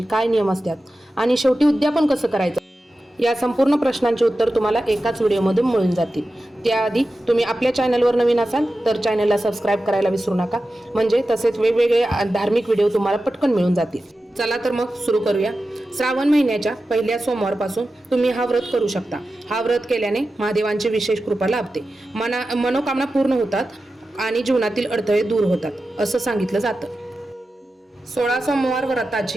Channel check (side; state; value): both; normal; correlation 0.93